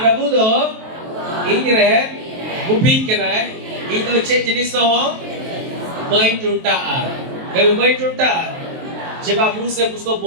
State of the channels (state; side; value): late; left; 23 ms